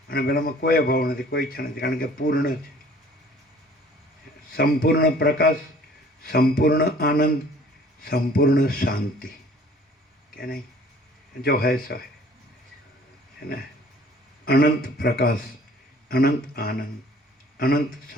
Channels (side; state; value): both; normal; correlation 0.53